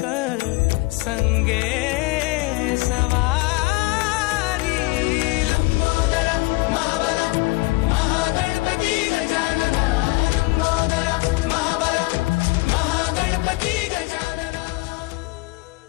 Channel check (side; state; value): right; quieter; 23.8 dB